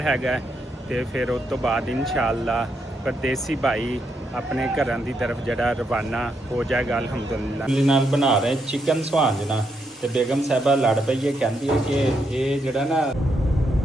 ਹੈਗਾ ਤੇ ਫਿਰ ਉਸ ਤੋਂ ਬਾਅਦ ਇਨਸ਼ਾਅੱਲਾ ਪਰਦੇਸੀ ਭਾਈ ਆਪਣੇ ਘਰਾਂ ਦੀ ਤਰਫ ਜਿਹੜਾ ਰਵਾਨਾ ਹੋ ਜਾਏਗਾ ਅਲਹਮਦੁਲਿਲਾ। ਨਾਲ ਬਣਾ ਰਹੇ ਚਿਕਨ ਸੁਹਾਂਜਣਾ ਤੇ ਬੇਗਮ ਸਾਹਿਬਾ ਲੜ ਪਈ ਹੈ, ਕਹਿੰਦੀ ਹੈ ਕਿ ਇਹ ਜਿਹੜਾ ਨਾ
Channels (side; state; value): both; normal; correlation 0.79